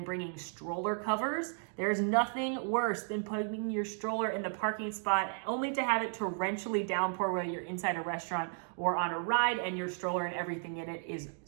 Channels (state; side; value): silent; left; 55 dB below the other